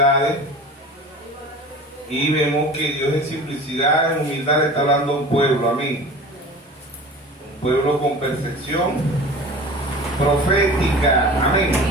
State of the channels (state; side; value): normal; both; correlation 0.38